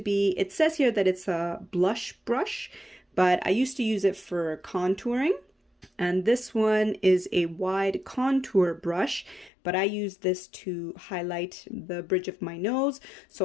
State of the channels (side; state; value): right; drops out; at 9.5 s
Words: be, it says here that it's a blush brush, but I used to use it for contouring. And this one is a wide contour brush, but I use this to highlight the bridge of my nose.